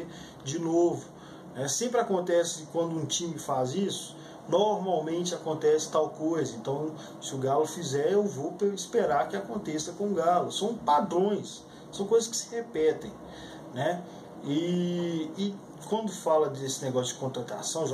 de novo. Sempre acontece quando um time faz isso, normalmente acontece tal coisa, então se o Galo fizer, eu vou esperar que aconteça com o Galo. São padrões, são coisas que se repetem, né? E quando fala desse negócio de contratação,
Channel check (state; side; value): identical; both; correlation 1.00